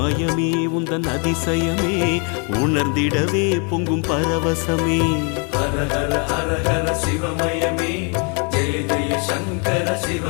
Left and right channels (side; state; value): right; quieter; 36.7 dB